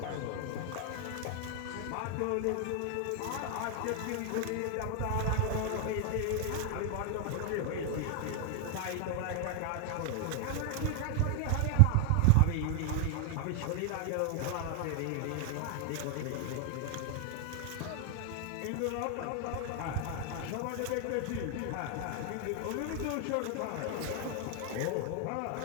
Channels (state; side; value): different; both; correlation 0.00